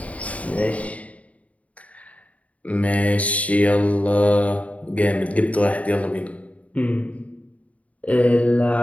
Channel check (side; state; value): right; late; 0.068 ms